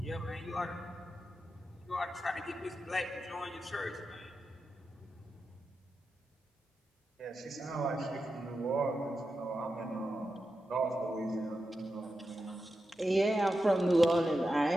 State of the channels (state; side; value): normal; both; correlation 0.89